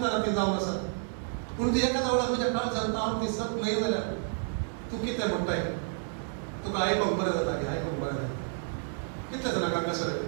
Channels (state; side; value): silent; left; 58 dB below the other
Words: ती जावन आसा पूण ती एखाद्या वेळार म्हज्या काळजांत हांव ती सत न्हय जाल्यार तूं कितें म्हणटाय तुका आयकोंक बरें जाता की आयकोंक बरें जाता कितले जाणांक हांगासर